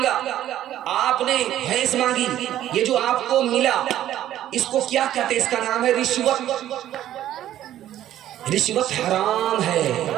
آپ نے بھینس مانگی, یہ جو آپ کو ملا اس کو کیا کہتے ہیں؟ اس کا نام ہے رشوت. رشوت حرام ہے.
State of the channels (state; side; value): quieter; left; 12.4 dB